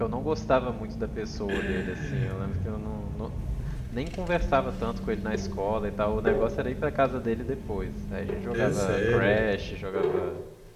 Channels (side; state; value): both; identical; correlation 1.00